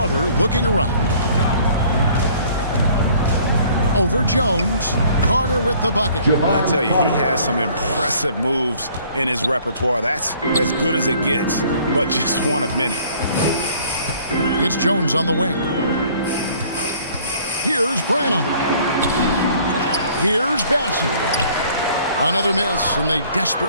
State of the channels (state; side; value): inverted; both; correlation -0.56